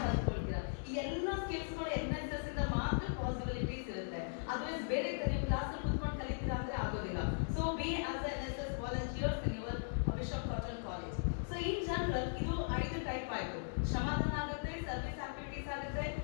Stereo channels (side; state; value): right; silent; digital silence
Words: ಕಲ್ತ್ಕೊಳ್ತೀರಾ. ಈ ಎಲ್ಲ ಸ್ಕಿಲ್ಸ್ ಗಳು NSS ಇಂದ ಮಾತ್ರ ಪಾಸಿಬಿಲಿಟೀಸ್ ಇರುತ್ತೆ. ಅದರ್ವೈಸ್ ಬೇರೆ ನೀವು ಕ್ಲಾಸ್ ನಲ್ಲಿ ಕೂತ್ಕೊಂಡು ಕಲಿತೀರಾ ಅಂದ್ರೆ ಆಗೋದಿಲ್ಲ. So B as NSS volunteers in your bishop cotton college. So in general ಇದು 5 ಟೈಪ್ ಆಯ್ತು. ಶ್ರಮದಾನ ಆಗುತ್ತೆ, ಸರ್ವಿಸ್ ಆಕ್ಟಿವಿಟೀಸ್ ಆಗುತ್ತೆ,